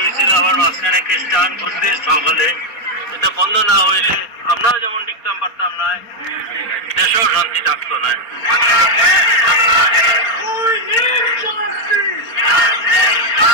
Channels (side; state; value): right; late; 4.3 ms